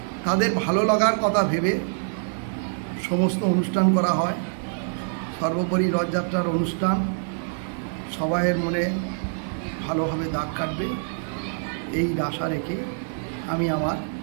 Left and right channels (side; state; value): left; silent; digital silence